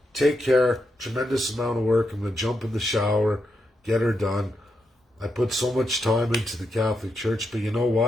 Take care. Tremendous amount of work. I'm going to jump in the shower, get her done. I put so much time into the Catholic Church, but you know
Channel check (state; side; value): normal; both; correlation 0.83